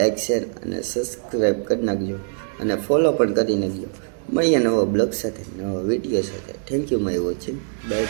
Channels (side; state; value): left; silent; digital silence